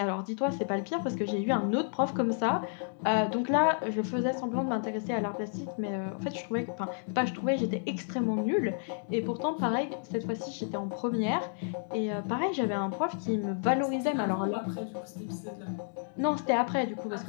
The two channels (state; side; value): silent; right; digital silence